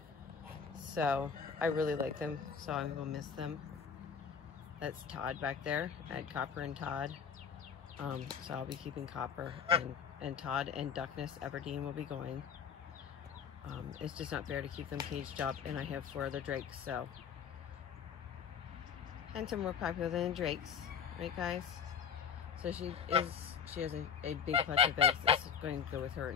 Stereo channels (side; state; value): right; quieter; 7.1 dB